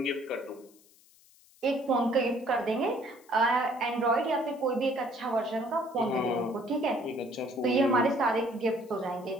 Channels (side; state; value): left; noise; hiss, 28 dB below the sound